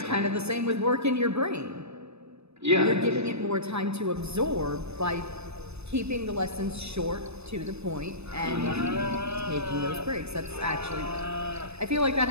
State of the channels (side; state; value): left; late; 0.80 ms